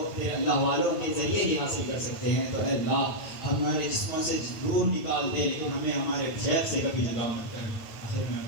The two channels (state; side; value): late; right; 8.9 ms